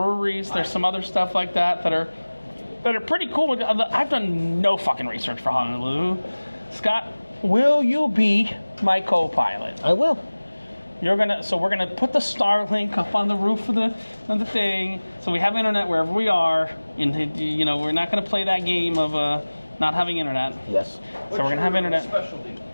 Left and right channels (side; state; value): both; inverted; correlation -1.00